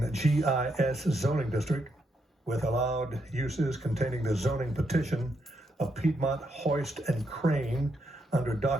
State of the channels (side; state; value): both; normal; correlation 0.79